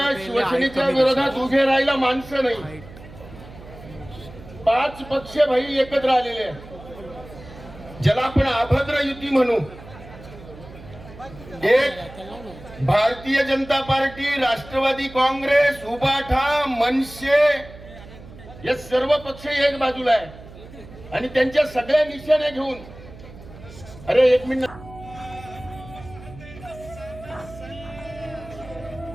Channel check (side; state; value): right; noise; hum, 17 dB below the sound